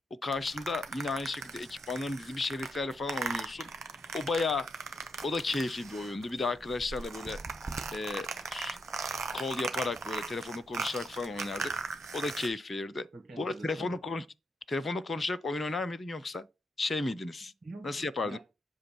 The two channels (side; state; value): both; normal; correlation 0.80